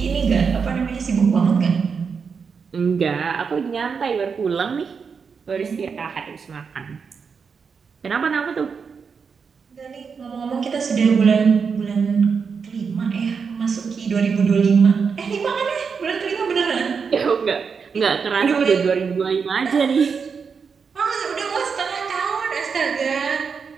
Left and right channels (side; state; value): left; quieter; 5.8 dB